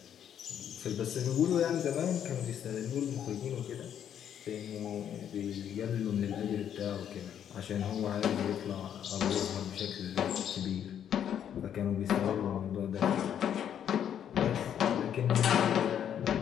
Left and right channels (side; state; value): right; quieter; 9.4 dB